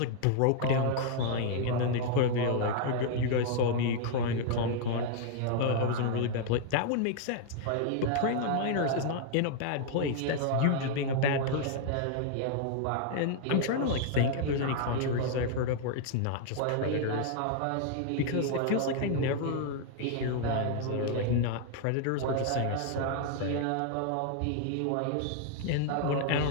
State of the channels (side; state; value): both; different; correlation 0.00